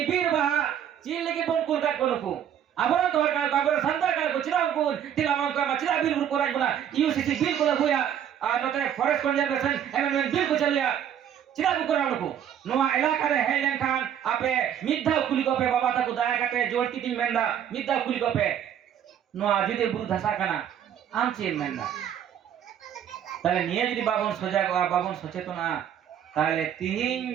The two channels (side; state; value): left; quieter; 9.5 dB